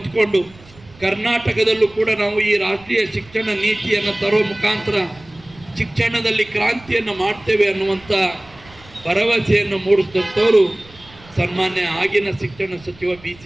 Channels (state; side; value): noise; right; rumble, 24 dB below the sound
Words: ಕರ್ನಾಟಕದಲ್ಲೂ ಕೂಡ ನಾವು ಈ ರಾಷ್ಟ್ರೀಯ ಶಿಕ್ಷಣ ನೀತಿಯನ್ನು ತರೋ ಮುಖಾಂತರ ಶಿಕ್ಷಣದಲ್ಲಿ ಕ್ರಾಂತಿಯನ್ನು ಮಾಡ್ತೇವೆ ಅನ್ನುವಂಥ ಭರವಸೆಯನ್ನು ಮೂಡಿಸಿದಂಥವರು ಸನ್ಮಾನ್ಯ ಆಗಿನ ಶಿಕ್ಷಣ ಸಚಿವ